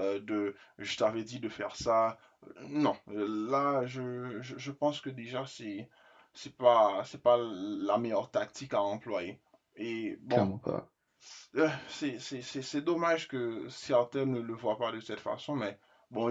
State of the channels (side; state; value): both; identical; correlation 1.00